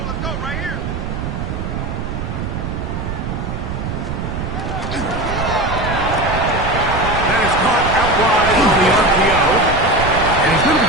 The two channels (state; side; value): noise; right; rumble, 4 dB below the sound